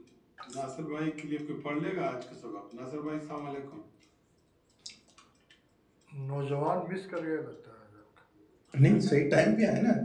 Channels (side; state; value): both; identical; correlation 1.00